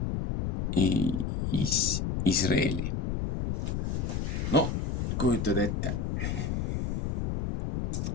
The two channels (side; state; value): left; noise; rumble, 1 dB below the sound